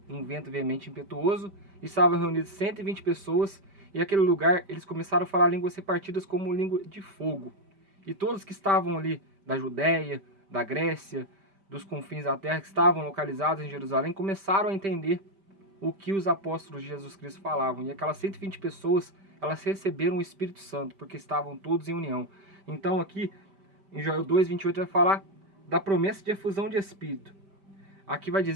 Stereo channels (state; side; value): late; left; 5.1 ms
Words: um vento veemente impetuoso, e estavam reunidas 120 pessoas, e aquele lugar eles começaram a falar línguas repartidas como língua de fogo. E todos que estavam ali da Judéia, da Grécia, dos confins da terra, que estavam localizados em Jerusalém, começaram a entender o que os apóstolos de Jesus Cristo falavam. E aquelas 120 pessoas, elas receberam o Espírito Santo, porque estavam todos em união. Então aqui, em Joel 2, 28, vai falar da promessa de efusão de Espírito. Aqui vai